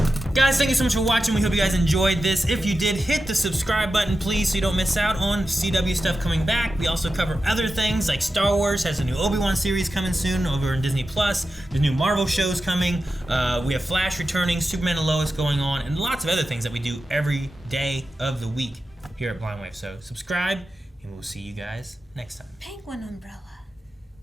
Guys, thank you so much for watching. We hope you guys enjoyed this. If you did, hit the subscribe button, please, so you don't miss out on CW stuff coming back. We also cover other things, like Star Wars has a new Obi-Wan series coming soon over in Disney+. There's new Marvel shows coming. We have Flash returning, Superman and Lois going on, and lots of other things that we do every day of the week here at Blind Wave. So subscribe, and we'll see you guys next time. Penguin umbrella.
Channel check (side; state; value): both; normal; correlation 0.91